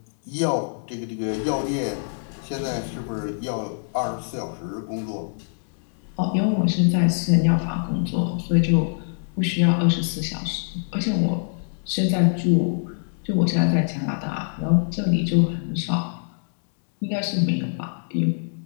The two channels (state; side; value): silent; right; digital silence